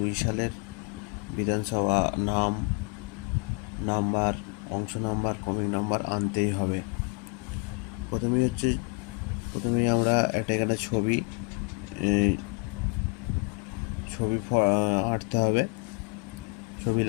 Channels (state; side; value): quieter; right; 30.4 dB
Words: সালের বিধানসভা নাম্বার, অংশ নাম্বার, ক্রমিক নাম্বার আনতেই হবে। প্রথমেই আমরা একটা এখানে ছবি আঁটতে হবে, ছবি